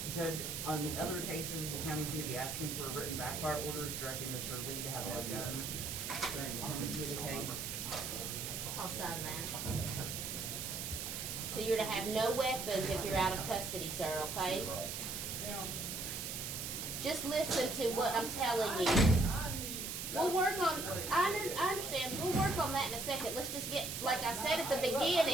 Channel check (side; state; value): right; noise; hiss, 4 dB below the sound